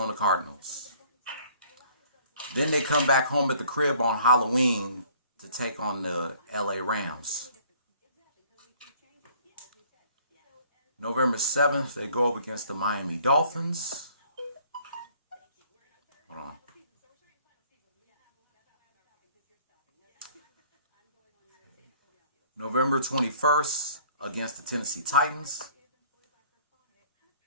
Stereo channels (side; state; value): both; inverted; correlation -0.57